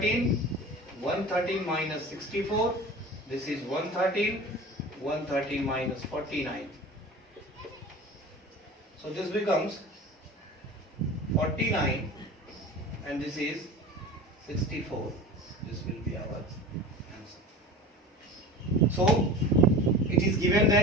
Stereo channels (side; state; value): both; normal; correlation 0.36